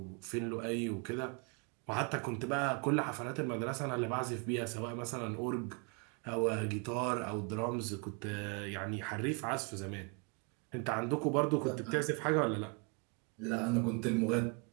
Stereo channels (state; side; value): quieter; left; 33.8 dB